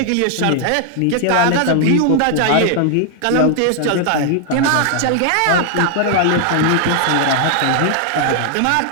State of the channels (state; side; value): different; both; correlation 0.00